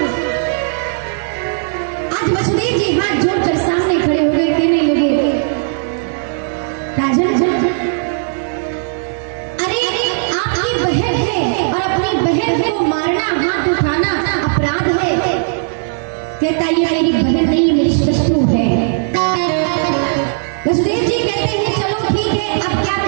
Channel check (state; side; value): silent; left; digital silence